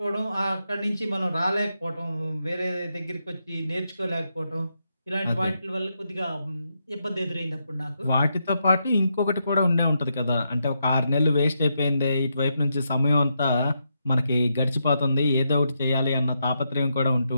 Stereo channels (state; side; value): inverted; both; correlation -0.82